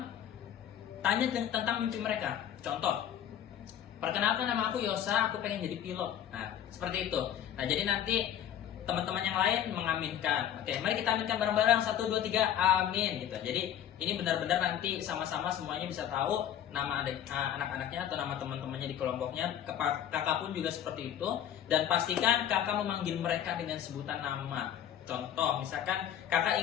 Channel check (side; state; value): right; quieter; 10.2 dB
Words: tanya tentang mimpi mereka. Contoh, perkenalkan nama aku Yosa, aku pengen jadi pilot. Nah, seperti itu. Nah, jadi nanti teman-teman yang lain mengaminkan. Oke, mari kita aminkan bareng-bareng. 1, 2, 3, amin gitu. Jadi ini benar-benar nanti sama-sama semuanya bisa tahu nama anak-anaknya atau nama teman-temannya di kelompoknya. Kakak pun juga seperti itu. Dan pastikan kakak memanggil mereka dengan sebutan nama. Contoh, misalkan kakak